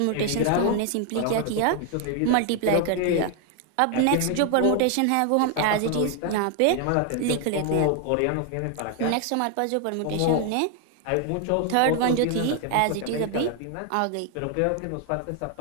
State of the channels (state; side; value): different; both; correlation 0.00